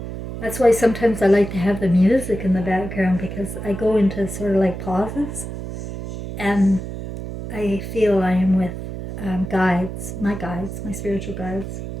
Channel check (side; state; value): right; noise; hum, 8 dB below the sound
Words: that's why sometimes I like to have the music in the background, because I go into sort of like pauses and I feel I am with guides, my spiritual guides,